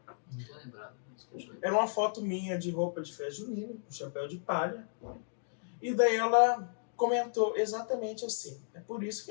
Não tô lembrado. Era uma foto minha de roupa de festa junina, com chapéu de palha. E daí ela comentou exatamente assim: é por isso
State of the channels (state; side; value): silent; right; digital silence